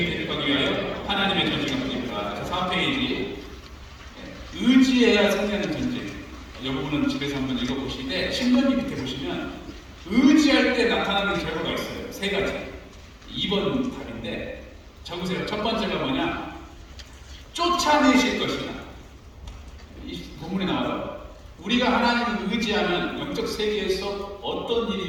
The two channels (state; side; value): identical; both; correlation 1.00